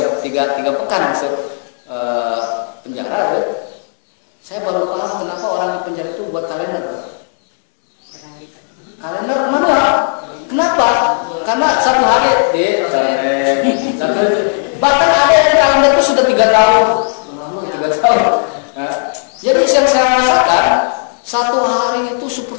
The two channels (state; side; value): silent; right; digital silence